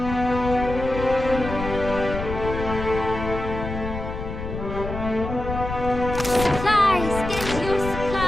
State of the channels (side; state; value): left; noise; rumble, 6 dB below the sound